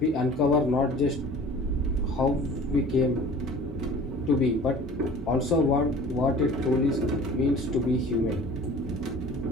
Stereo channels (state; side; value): normal; both; correlation 0.44